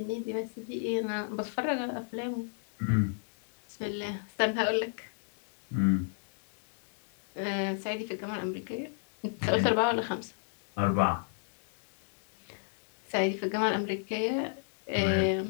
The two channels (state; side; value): silent; right; digital silence